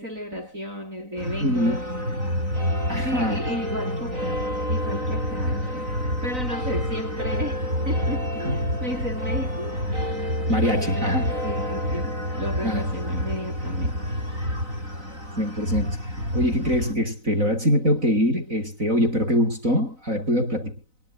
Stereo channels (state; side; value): late; left; 3.9 ms